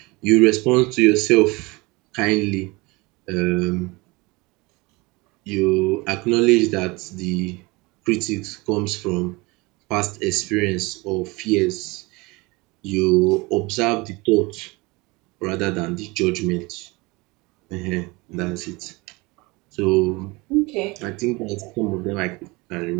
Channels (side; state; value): left; quieter; 24.5 dB